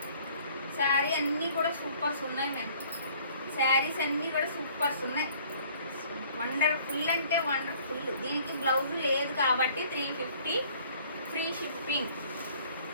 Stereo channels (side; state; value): both; inverted; correlation -0.56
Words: శారీ అన్నీ కూడా సూపర్స్ ఉన్నాయి మ్యామ్. శారీస్ అన్నీ కూడా సూపర్స్ ఉన్నాయి. వండర్ఫుల్ అంటే వండర్ఫుల్. దీనికి బ్లౌజ్ లేదు కాబట్టి 350 ఫ్రీ షిప్పింగ్.